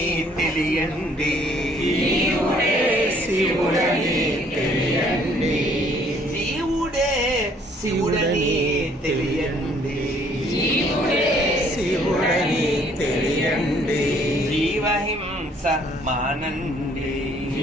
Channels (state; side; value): normal; both; correlation 0.62